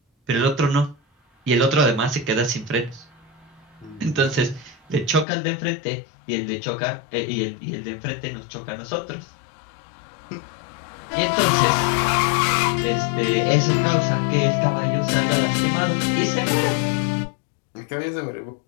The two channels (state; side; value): drops out; right; at 5.2 s